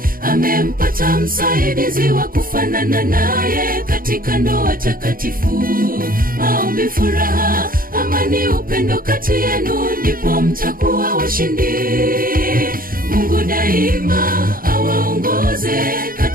Amempata msaidizi wa kufanana naye katika ndoa takatifu. Maombi, furaha, amani, upendo kati yenu, ndipo mtakuwa washindi. Mungu daima awaongoze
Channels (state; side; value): late; left; 0.41 ms